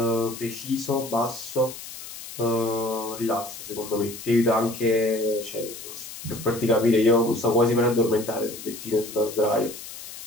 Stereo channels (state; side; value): noise; left; hiss, 12 dB below the sound